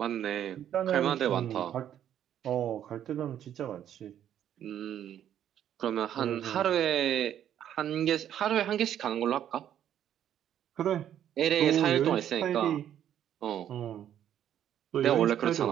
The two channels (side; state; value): left; quieter; 10.4 dB